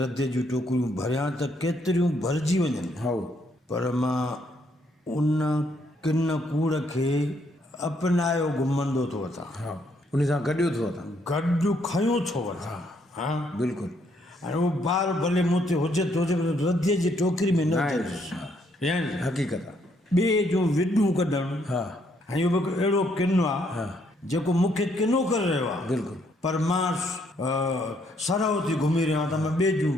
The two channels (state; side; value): normal; both; correlation 0.71